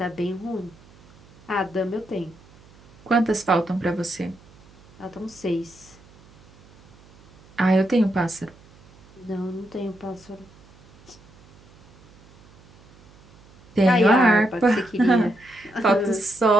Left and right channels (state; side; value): noise; right; hum, 26 dB below the sound